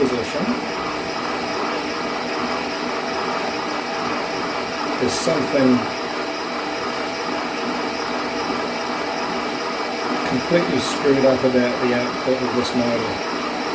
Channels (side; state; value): both; identical; correlation 1.00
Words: there's something completely screwed up about the output of this motor.